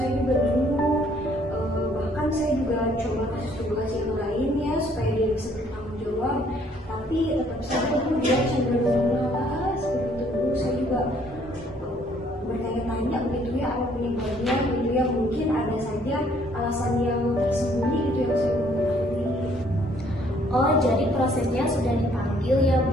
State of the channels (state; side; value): normal; both; correlation 0.63